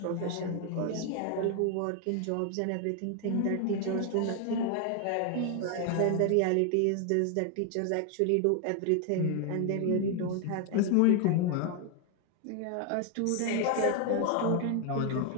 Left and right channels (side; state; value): both; different; correlation 0.01